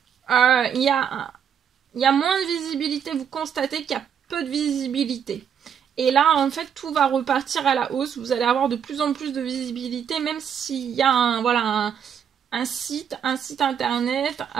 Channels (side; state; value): left; quieter; 8.1 dB